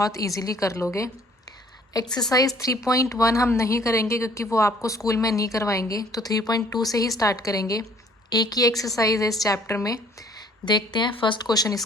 ईजीली कर लोगे। एक्सरसाइज 3.1 हम नहीं करेंगे क्योंकि वो आपको स्कूल में नहीं करवाएंगे, तो 3.2 से ही स्टार्ट करेंगे। एक ही एक्सरसाइज है इस चैप्टर में। देखते हैं फर्स्ट क्वेश्चन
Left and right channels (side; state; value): both; normal; correlation 0.57